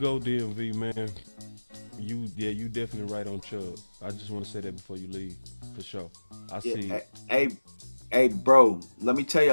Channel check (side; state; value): both; inverted; correlation -1.00